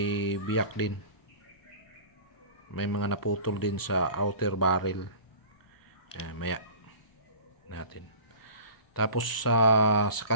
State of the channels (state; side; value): late; right; 1.1 ms